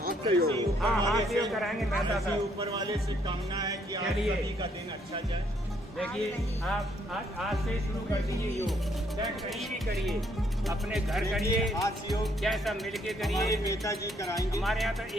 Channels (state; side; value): normal; both; correlation 0.69